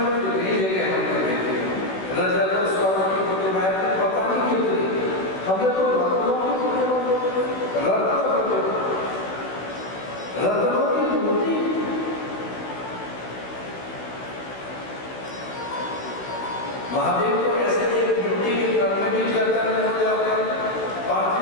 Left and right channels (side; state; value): right; late; 16 ms